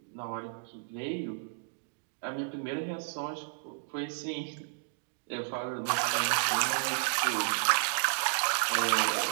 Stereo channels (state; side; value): silent; left; digital silence